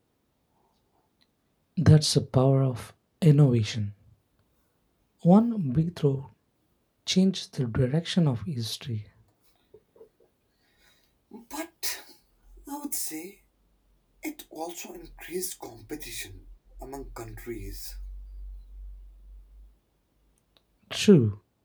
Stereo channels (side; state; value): both; identical; correlation 1.00